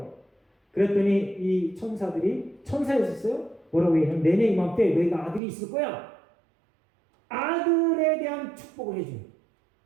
그랬더니 이 천사들이 천사였었어요. 뭐라고 얘기하면 내년 이맘때 너희가 아들이 있을 거야. 아들에 대한 축복을 해줘요.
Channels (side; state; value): left; drops out; at 5.4 s